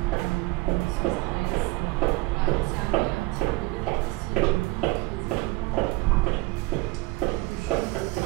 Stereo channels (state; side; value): quieter; left; 21.8 dB